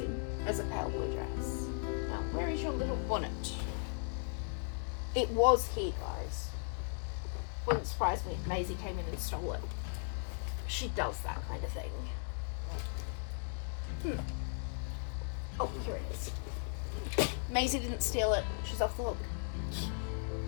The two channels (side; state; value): right; silent; 53 dB below the other